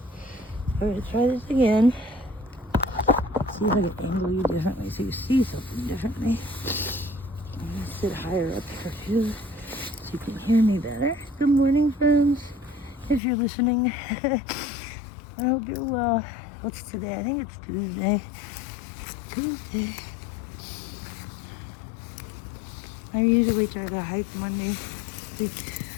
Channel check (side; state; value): right; drops out; at 13.2 s